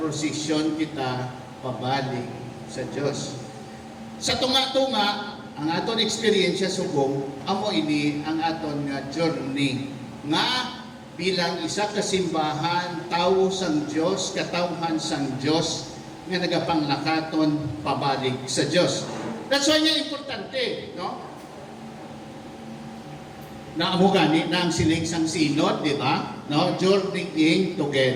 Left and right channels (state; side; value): identical; both; correlation 1.00